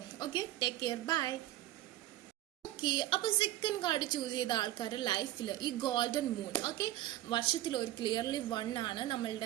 Okay, take care, bye. Okay, അപ്പോൾ സെക്കൻഡ് കാർഡ് ചൂസ് ചെയ്ത ആൾക്കാരുടെ ലൈഫിൽ ഈ ഗോൾഡൻ മൂൺ, ഓക്കെ, വർഷത്തിൽ ഒരു ക്ലിയർലി 1 ആണ്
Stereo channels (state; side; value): quieter; left; 14.8 dB